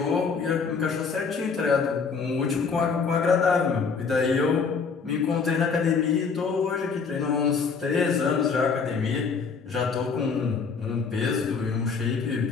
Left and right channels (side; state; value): right; quieter; 5.3 dB